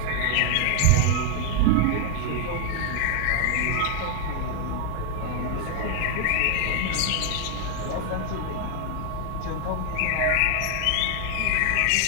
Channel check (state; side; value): different; both; correlation 0.00